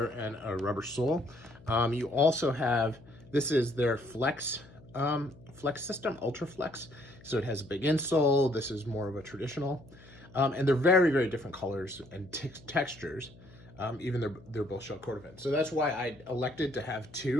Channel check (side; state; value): left; noise; hum, 22 dB below the sound